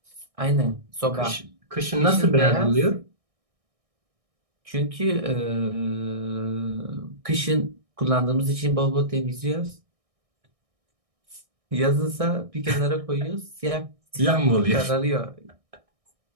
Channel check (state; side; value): late; left; 1.6 ms